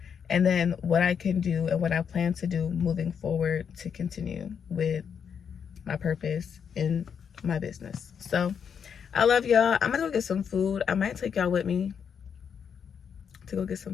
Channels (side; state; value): right; quieter; 7.2 dB